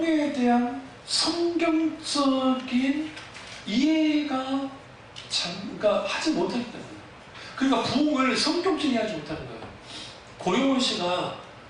대한 성경적인 이해가 그러니까 하지 못했기 때문에. 그러니까 부흥을 성경적인 이해하지 못하는 거예요. 고영원 씨가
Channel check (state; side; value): identical; both; correlation 1.00